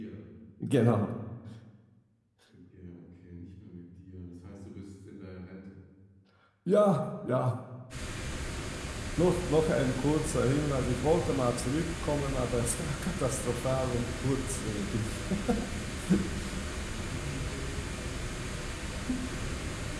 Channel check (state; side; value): identical; both; correlation 1.00